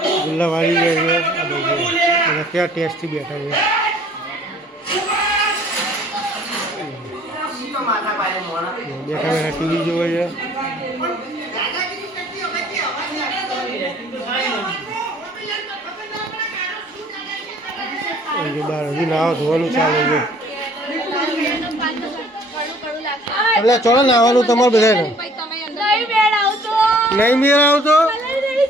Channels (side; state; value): both; normal; correlation 0.56